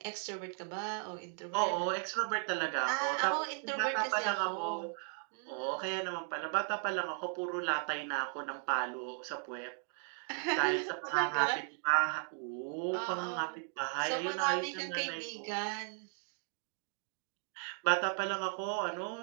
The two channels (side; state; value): left; silent; 54 dB below the other